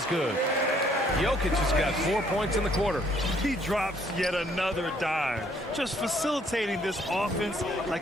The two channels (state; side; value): normal; both; correlation 0.65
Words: good. Jokic has got 4 points in the quarter. He drops yet another dime, just facilitating this offense